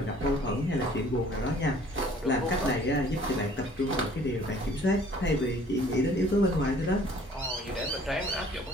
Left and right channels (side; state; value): both; normal; correlation 0.54